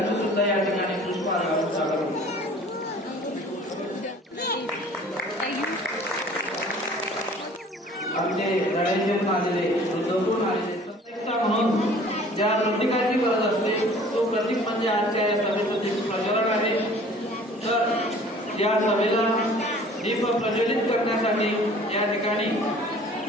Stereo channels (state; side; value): normal; both; correlation 0.50